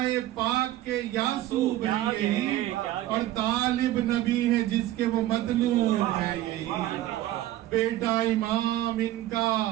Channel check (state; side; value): quieter; left; 14.4 dB